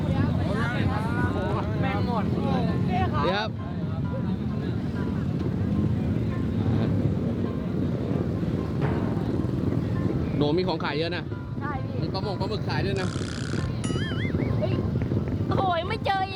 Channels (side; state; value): both; identical; correlation 1.00